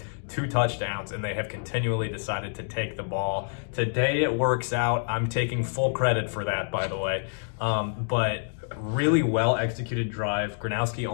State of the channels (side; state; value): right; silent; digital silence